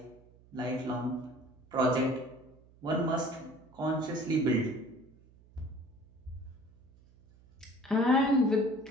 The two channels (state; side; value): noise; right; hum, 26 dB below the sound